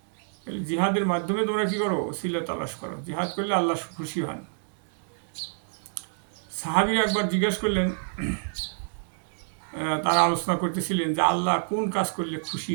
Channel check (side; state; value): left; silent; 60 dB below the other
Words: জিহাদের মাধ্যমে তোমরা কি করো? ওসিলা তালাশ করো। জিহাদ করলে আল্লাহ খুশি হন। সাহাবীরা একবার জিজ্ঞেস করলেন, তারা আলোচনা করতেছিলেন যে আল্লাহ কোন কাজ করলে খুশি